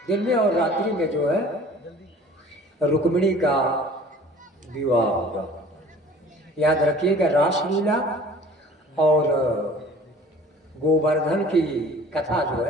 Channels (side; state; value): both; normal; correlation 0.47